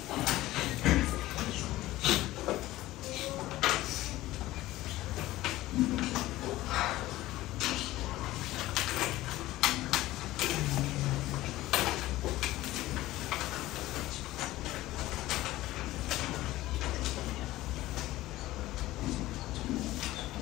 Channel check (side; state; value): right; quieter; 16.7 dB